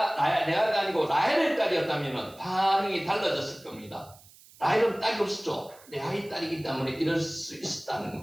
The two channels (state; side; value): noise; right; hiss, 24 dB below the sound